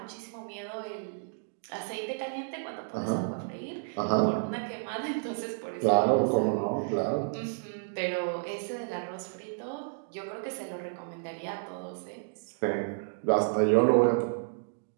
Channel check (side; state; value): left; silent; digital silence